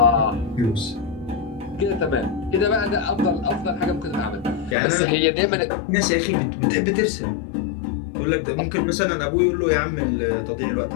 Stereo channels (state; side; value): drops out; right; at 4.8 s